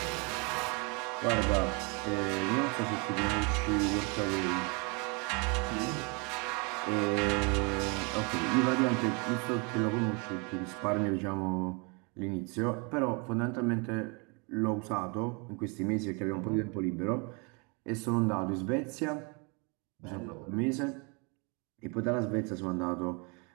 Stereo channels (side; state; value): left; quieter; 31.7 dB